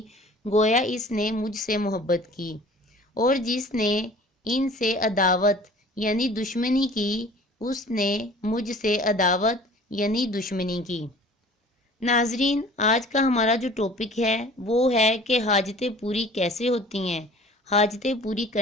گویا اس نے مجھ سے محبت کی، اور جس نے ان سے عداوت یعنی دشمنی کی، اس نے مجھ سے عداوت یعنی دشمنی کی۔ ناظرین، آج کا ہمارا جو ٹاپک ہے وہ ہے کہ حاجتیں پوری کیسے ہوتی ہیں، حاجتیں پوری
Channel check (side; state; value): both; normal; correlation 0.47